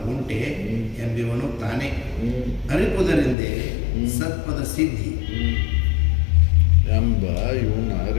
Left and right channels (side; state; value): right; drops out; at 3.4 s